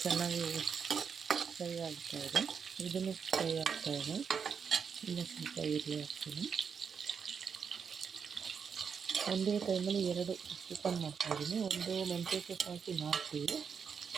ಚೆನ್ನಾಗಿ ಫ್ರೈ ಆಗ್ತಾಯಿದೆ. ಇದನ್ನು ಫ್ರೈ ಆಗ್ತಾಯಿದೆ. ಇನ್ನೂ ಸ್ವಲ್ಪ ಈರುಳ್ಳಿ ಹಾಕ್ತೀನಿ. ಒಂದೇ ಟೈಮಲ್ಲಿ 2 ಚಿಕನ್ ಮಾಡ್ತಾಯಿದ್ದೀನಿ. ಒಂದು ಮೆಂತ್ಯ ಸೊಪ್ಪು ಹಾಕಿ ಮಾಡ್ತೀವಿ.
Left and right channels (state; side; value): quieter; left; 6.5 dB